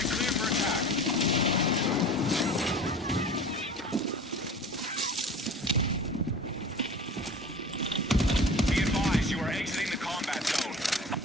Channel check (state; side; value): normal; both; correlation 0.39